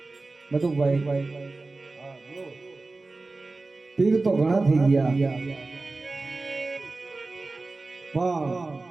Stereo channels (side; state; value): left; quieter; 3.5 dB